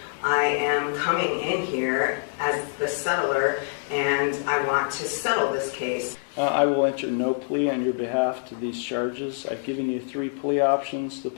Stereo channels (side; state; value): right; silent; digital silence